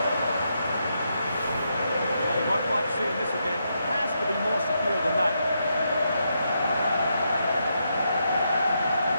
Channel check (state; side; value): inverted; both; correlation -0.81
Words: Seeing this again has to be more secure than that.